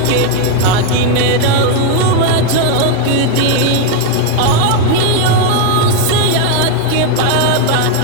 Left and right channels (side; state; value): both; different; correlation 0.01